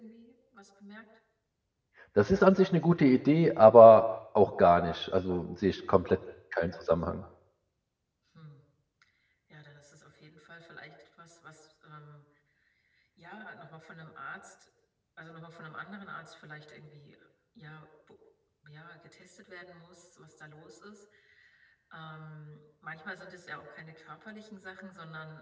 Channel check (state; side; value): identical; both; correlation 1.00